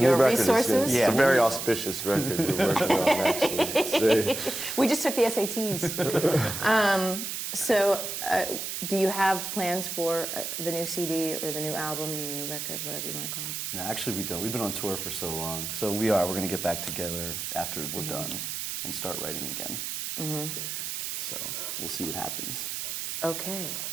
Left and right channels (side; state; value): right; noise; hiss, 4 dB below the sound